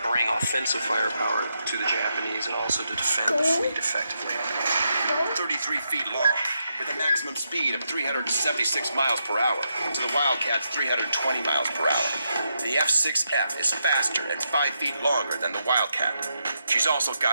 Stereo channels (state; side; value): inverted; both; correlation -0.82